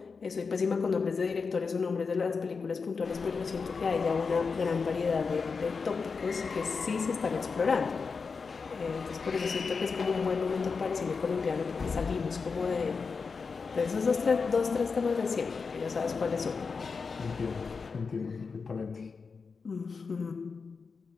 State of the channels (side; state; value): right; quieter; 5.0 dB